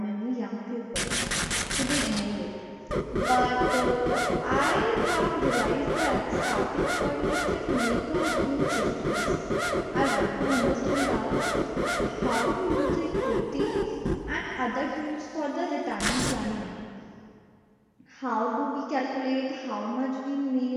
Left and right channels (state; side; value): identical; both; correlation 1.00